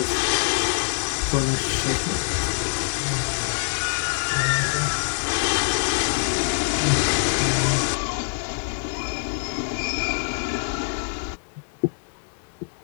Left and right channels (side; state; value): right; silent; digital silence